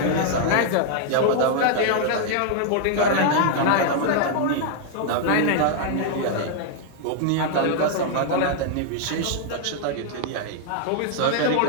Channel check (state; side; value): different; both; correlation 0.00